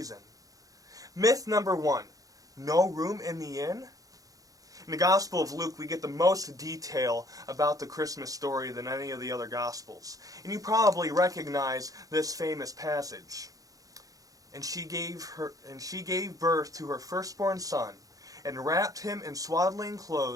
Myth number 1, no room in the inn. In the Gospel of Luke, we get the most detail about the Christmas story than any of the other Gospels. And you probably recognize this famous passage. And she gave birth to her firstborn son, and wrapped him in swaddling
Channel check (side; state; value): left; late; 0.17 ms